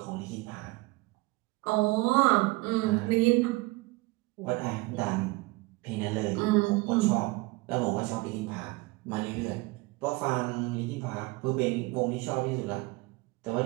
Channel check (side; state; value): left; quieter; 22.9 dB